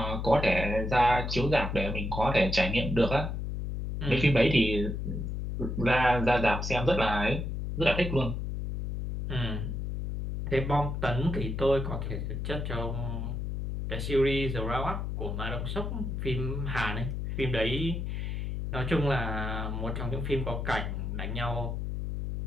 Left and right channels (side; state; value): left; noise; hum, 3 dB below the sound